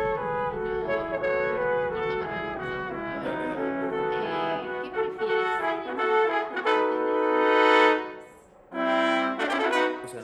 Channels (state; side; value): identical; both; correlation 1.00